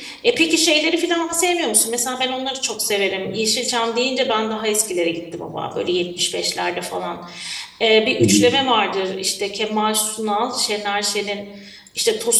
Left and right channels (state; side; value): identical; both; correlation 1.00